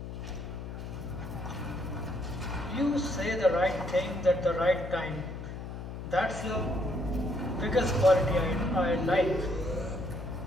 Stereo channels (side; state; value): left; noise; hum, 8 dB below the sound